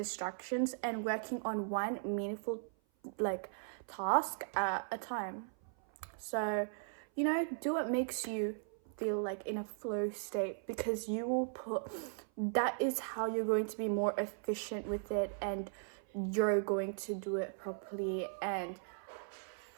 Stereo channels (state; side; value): silent; left; 53 dB below the other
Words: and working on one meaningful task at a time. So, you know, do what makes you feel like in a flow state, because that is how you're going to be more efficient with it and you're going to do it properly. And